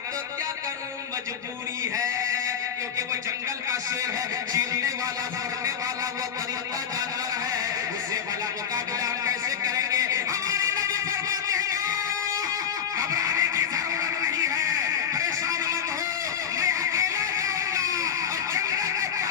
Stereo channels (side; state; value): right; quieter; 8.3 dB